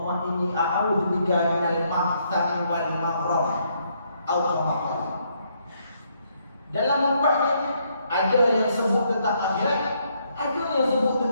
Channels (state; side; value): inverted; both; correlation -0.73